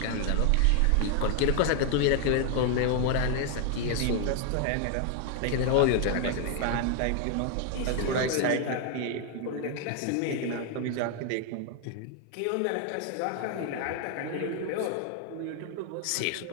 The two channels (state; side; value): different; both; correlation 0.00